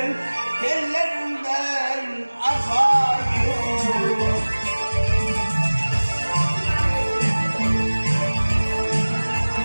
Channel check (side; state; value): both; inverted; correlation -1.00